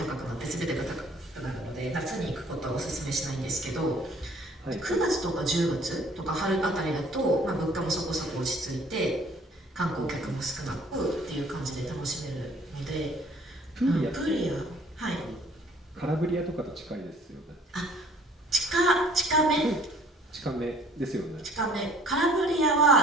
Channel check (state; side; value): normal; both; correlation 0.56